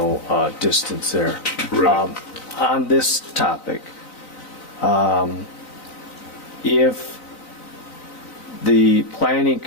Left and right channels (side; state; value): right; late; 3.9 ms